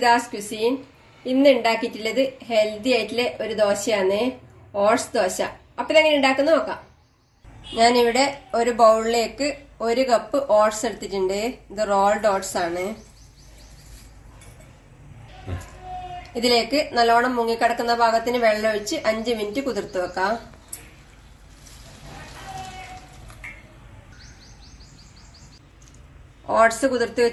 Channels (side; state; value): both; identical; correlation 1.00